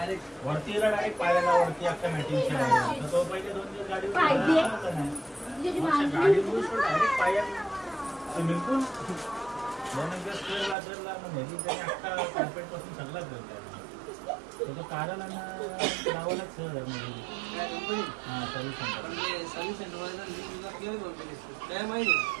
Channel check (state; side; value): drops out; left; at 10.8 s